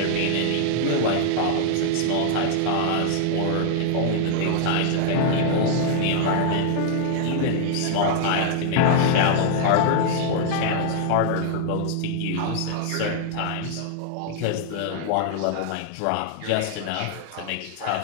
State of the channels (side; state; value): both; different; correlation 0.00